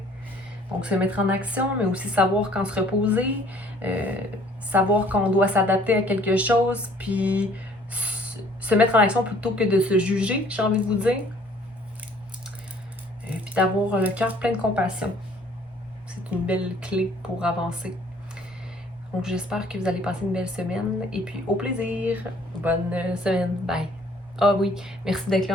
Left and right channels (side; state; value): both; normal; correlation 0.57